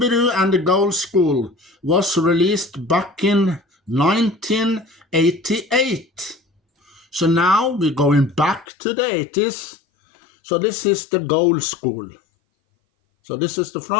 Doo and the Gold School was released back in 1988. So now we're going back to the 80s. So this is the Gold School. So this is the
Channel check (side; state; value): right; drops out; at 8.7 s